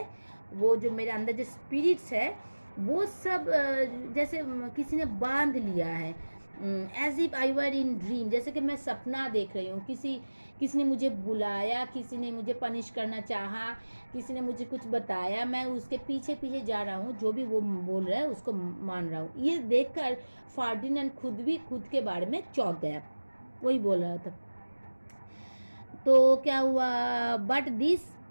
वो जो मेरे अंदर जो स्पिरिट्स है, वो सब जैसे किसी ने बांध लिया है। As if I were in dream, जैसे कि मैं सपना देख रही हूँ, किसी ने मुझे बुलाया, किसी ने मुझे पनिश करना चाहा, किसी ने मुझे कुछ बताया, मैं उसके पीछे पीछे जा रहा हूँ, जो भी वो बोल रहा है उसको मान रहा हूँ। ये देखकर फर्डिनेंड खुद के बारे में चौंक गया, वही बोल रहा था। तो क्या हुआ, but this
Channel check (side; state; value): both; inverted; correlation -1.00